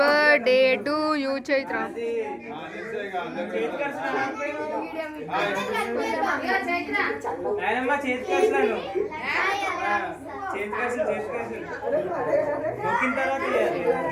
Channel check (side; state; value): both; identical; correlation 1.00